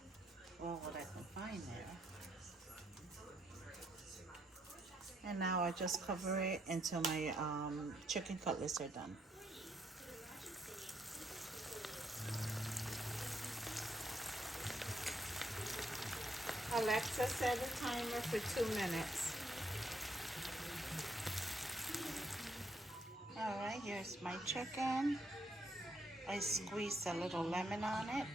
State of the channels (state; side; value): normal; both; correlation 0.74